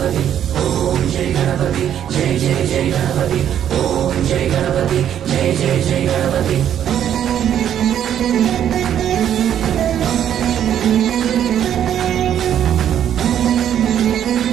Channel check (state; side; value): quieter; left; 10.0 dB